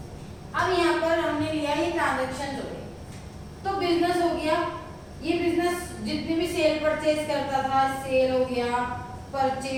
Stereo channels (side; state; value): both; identical; correlation 1.00